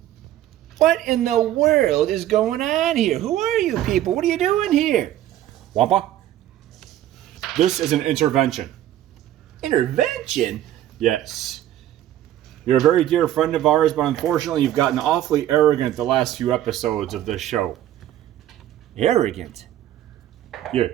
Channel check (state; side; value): quieter; left; 12.7 dB